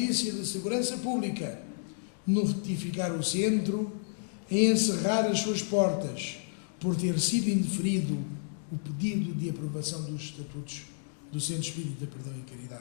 de Segurança Pública notificar o centro e encerrar as suas portas por ter sido indeferido o pedido de aprovação dos estatutos do Centro Espírita Perdão e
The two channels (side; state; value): right; silent; digital silence